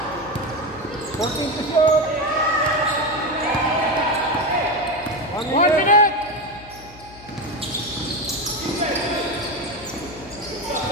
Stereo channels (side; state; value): left; noise; hum, 20 dB below the sound